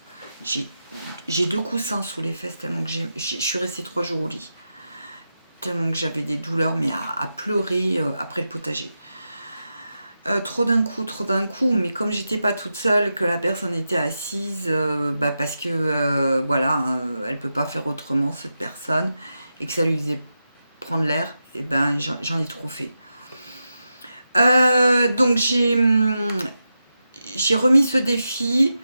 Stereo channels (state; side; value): inverted; both; correlation -0.89